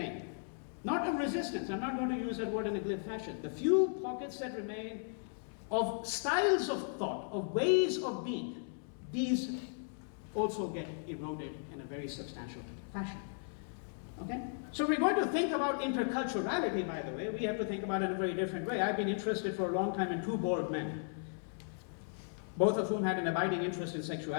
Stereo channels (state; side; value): silent; right; digital silence